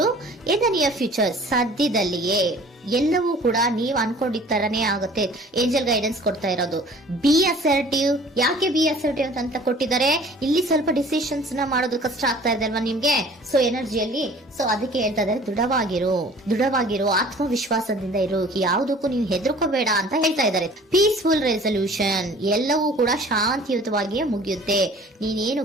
ಇನ್ ದ ನಿಯರ್ ಫ್ಯೂಚರ್, ಸದ್ಯದಲ್ಲಿಯೇ ಎಲ್ಲವೂ ಕೂಡ ನೀವು ಅನ್ಕೊಂಡಿದ್ದ ತರನೇ ಆಗುತ್ತೆ. ಏಂಜಲ್ ಗೈಡೆನ್ಸ್ ಕೊಡ್ತಾ ಇರೋದು ಬಿ ಅಸರ್ಟಿವ್. ಯಾಕೆ ಬಿ ಅಸರ್ಟಿವ್ ಅಂತ ಕೊಟ್ಟಿದ್ದಾರೆ? ಇಲ್ಲಿ ಸ್ವಲ್ಪ ಡಿಸಿಷನ್ಸ್ ನ ಮಾಡೋದು ಕಷ್ಟ ಆಗ್ತಾ ಇದೆ ಅಲ್ವಾ ನಿಮ್ಗೆ, ಸೊ ಎನರ್ಜಿಯಲ್ಲಿ. ಸೊ ಅದಕ್ಕೆ ಹೇಳ್ತಾ ಇದ್ದಾರೆ ದೃಢವಾಗಿರು, ಆತ್ಮವಿಶ್ವಾಸದಿಂದ ಇರು, ಯಾವುದಕ್ಕೂ ನೀವು ಹೆದರ್ಕೋಬೇಡ ಅಂತ ಹೇಳ್ತಾ ಇದ್ದಾರೆ. ಪೀಸ್ಫುಲ್ ರೆಸಲ್ಯೂಷನ್, ಎಲ್ಲವೂ ಕೂಡ ಶಾಂತಿಯುತವಾಗಿಯೇ ಮುಗಿಯುತ್ತೆ,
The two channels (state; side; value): normal; both; correlation 0.49